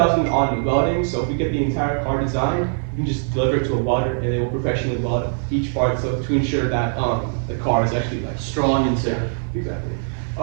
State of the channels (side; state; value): left; silent; digital silence